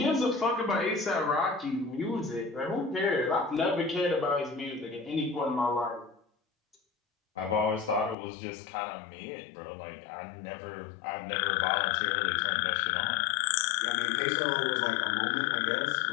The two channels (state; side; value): drops out; right; at 8.2 s